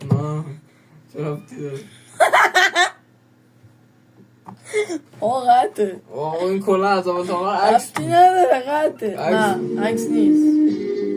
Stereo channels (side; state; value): both; identical; correlation 1.00